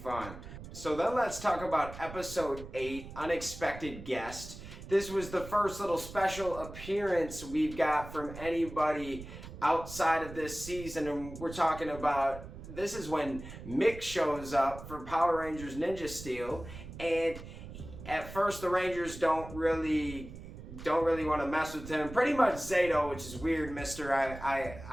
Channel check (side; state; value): right; noise; rumble, 13 dB below the sound